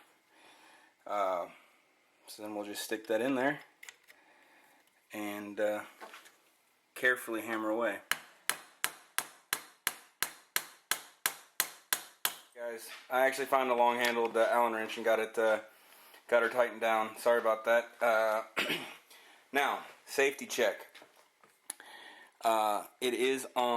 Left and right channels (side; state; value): both; identical; correlation 1.00